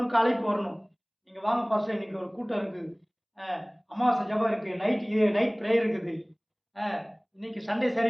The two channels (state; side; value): identical; both; correlation 1.00